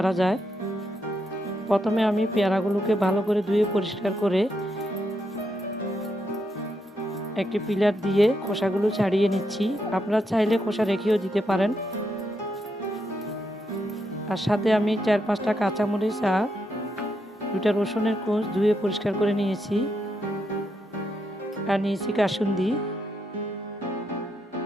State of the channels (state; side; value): normal; both; correlation 0.81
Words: যায়। প্রথমে আমি পেয়ারাগুলোকে ভালো করে ধুয়ে পরিষ্কার করে একটি পিলার দিয়ে খোসাগুলো ছাড়িয়ে নিচ্ছি। আপনারা চাইলে খোসা রেখেও দিতে পারেন। আর সাথে আমি 4-5টা কাঁচামরিচ আর 2টা রসুনের কোষ ধুয়ে পরিষ্কার করে নিয়েছি। আর নিয়েছি কাসুন্দি।